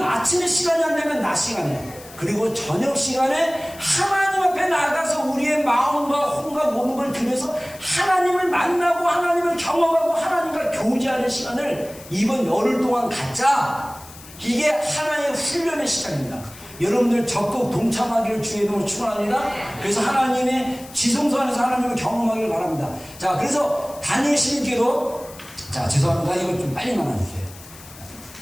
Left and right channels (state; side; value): noise; left; hiss, 19 dB below the sound